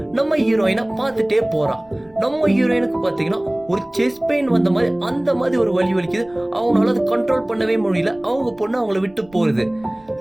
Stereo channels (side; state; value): right; noise; rumble, 29 dB below the sound